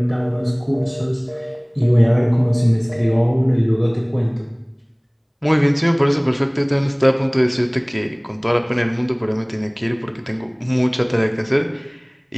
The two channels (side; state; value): both; identical; correlation 1.00